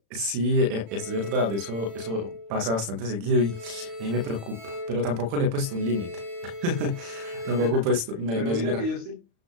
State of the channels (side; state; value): left; late; 35 ms